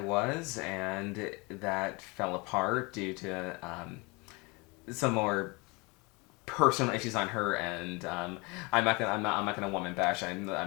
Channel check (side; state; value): right; quieter; 27.5 dB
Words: was, and that fell apart due to some more personal issues on her end. I'm not gonna woman bash.